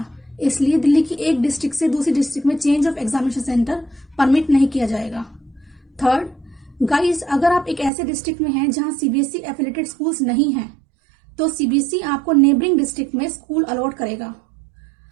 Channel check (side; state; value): left; drops out; at 7.9 s